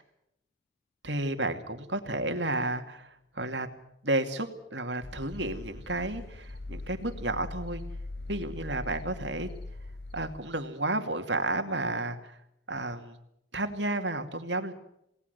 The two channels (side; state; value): both; normal; correlation -0.07